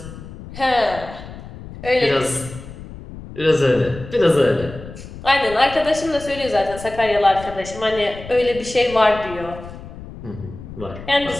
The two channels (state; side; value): noise; left; rumble, 14 dB below the sound